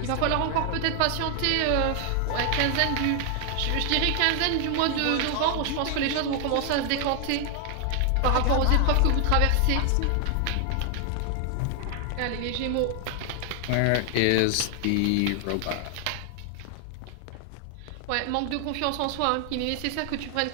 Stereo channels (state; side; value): different; both; correlation 0.00